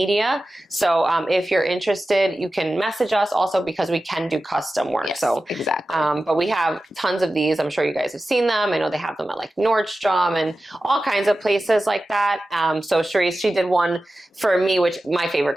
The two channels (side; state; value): both; normal; correlation 0.94